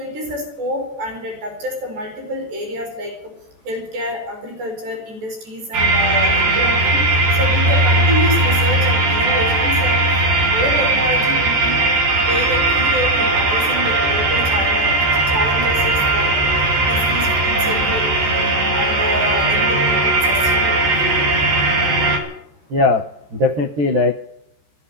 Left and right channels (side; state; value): left; late; 14 ms